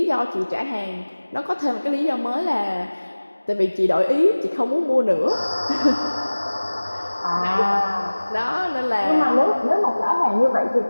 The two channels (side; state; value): both; inverted; correlation -1.00